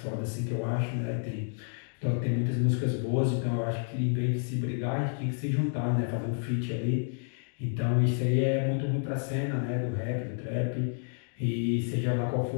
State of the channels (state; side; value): silent; right; digital silence